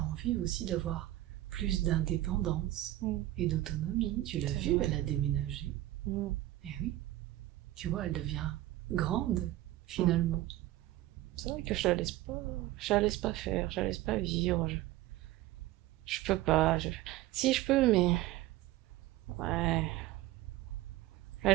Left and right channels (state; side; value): quieter; left; 15.8 dB